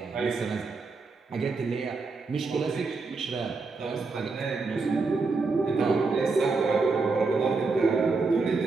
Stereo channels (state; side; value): quieter; left; 4.1 dB